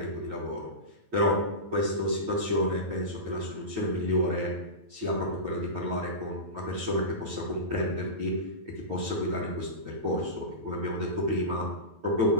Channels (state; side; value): late; left; 9.2 ms